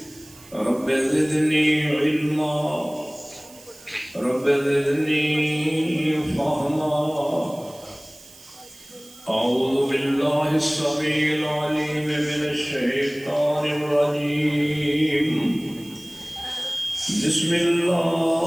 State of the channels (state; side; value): noise; right; hiss, 22 dB below the sound